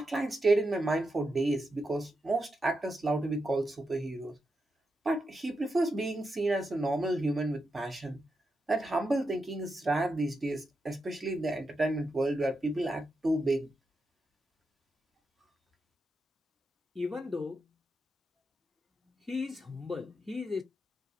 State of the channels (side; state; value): both; normal; correlation 0.86